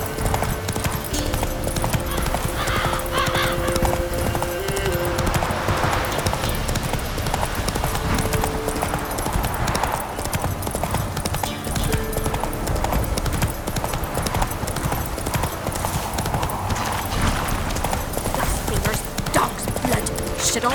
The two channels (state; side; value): identical; both; correlation 1.00